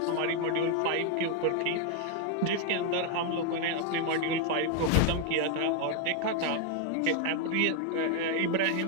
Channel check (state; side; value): different; both; correlation 0.01